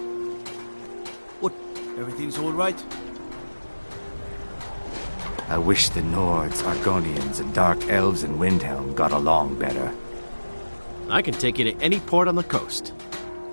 What? Everything's all right? I wish the Nords, Argonians, and Dark Elves in Windhelm got along better. I can take you to any port on the coast.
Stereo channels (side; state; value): both; inverted; correlation -1.00